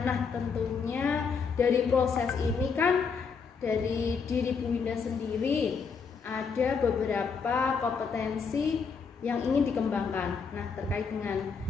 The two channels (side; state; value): right; quieter; 5.6 dB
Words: Nah, tentunya dari proses ini kan dari diri Bu Winda sendiri ada beberapa kompetensi yang ingin dikembangkan. Nah, terkait dengan